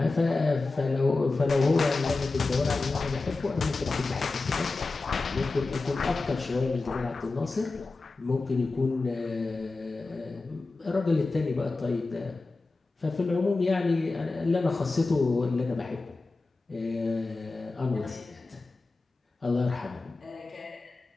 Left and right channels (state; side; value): quieter; right; 3.6 dB